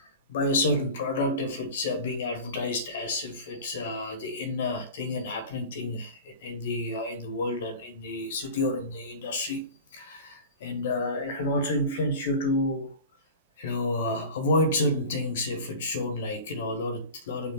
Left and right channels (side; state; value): both; inverted; correlation -0.35